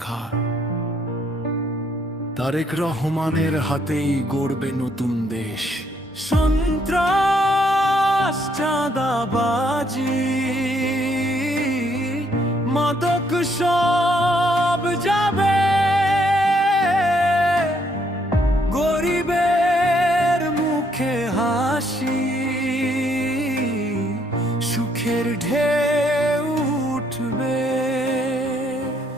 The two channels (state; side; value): normal; both; correlation 0.70